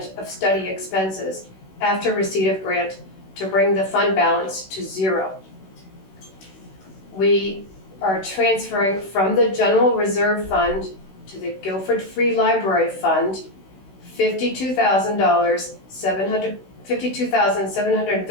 of study expenses after receipt of grant, to bring the fund balance to 0. We are transferring from the General Reserve Fund to the Guilford Free Library Fund,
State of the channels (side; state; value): right; late; 16 ms